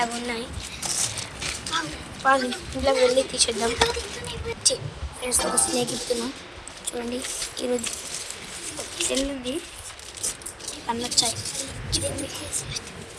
అవి ఉన్నాయి. వాళ్ళు ఇంట్లోకి వెళ్ళి తీసేద్దాం. ఫ్రెండ్స్ ఒక స్నేక్ ఇస్తున్నాం చూడండి. ఈరోజు సెల్ ఉంది, అన్నీ వచ్చాయి.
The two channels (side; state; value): both; identical; correlation 1.00